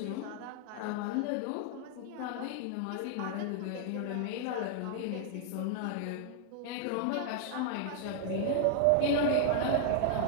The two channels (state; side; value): different; both; correlation 0.00